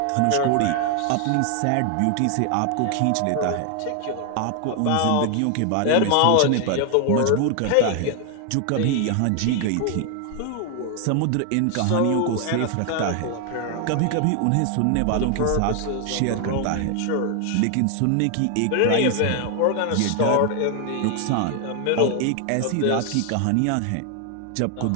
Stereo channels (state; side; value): different; both; correlation 0.00